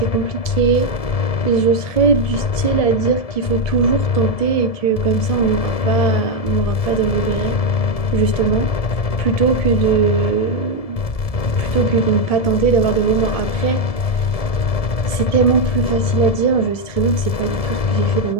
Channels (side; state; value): right; late; 1.7 ms